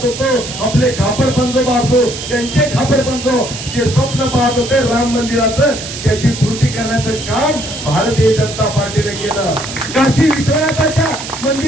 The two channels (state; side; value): noise; right; hiss, 9 dB below the sound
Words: होतो, आपले खापर पंजोबा असो, त्यांचे खापर पंजो जे स्वप्न पाहत होते राम मंदिराचं, त्याची पूर्ती करण्याचं काम भारतीय जनता पार्टीने केलं. काशी विश्वनाथाच्या